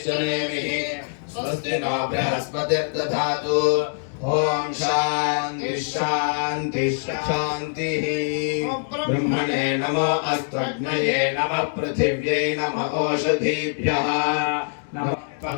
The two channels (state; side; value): silent; right; digital silence